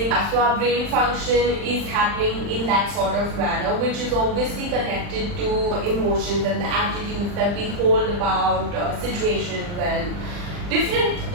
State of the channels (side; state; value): left; late; 40 ms